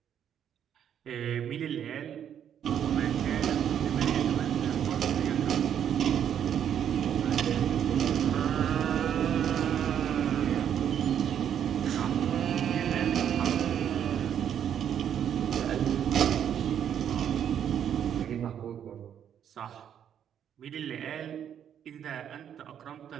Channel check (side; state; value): left; quieter; 9.2 dB